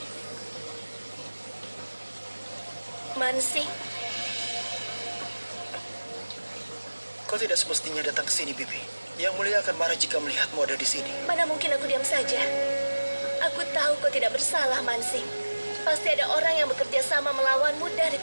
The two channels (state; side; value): inverted; both; correlation -1.00